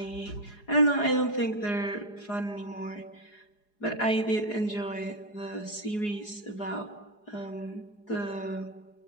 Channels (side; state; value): right; late; 4.8 ms